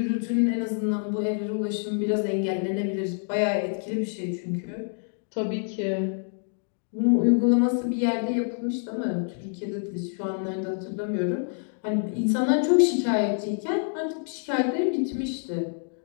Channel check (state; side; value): silent; right; 60 dB below the other